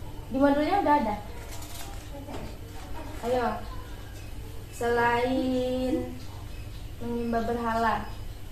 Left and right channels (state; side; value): identical; both; correlation 1.00